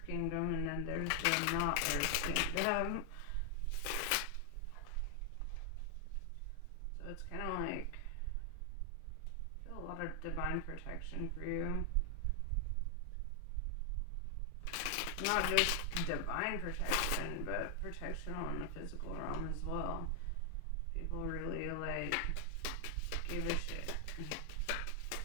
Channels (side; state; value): both; different; correlation 0.00